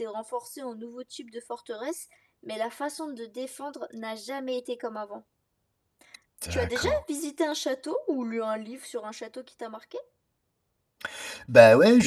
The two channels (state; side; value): identical; both; correlation 1.00